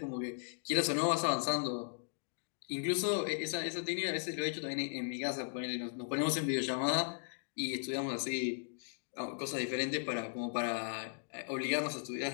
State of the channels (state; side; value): silent; right; digital silence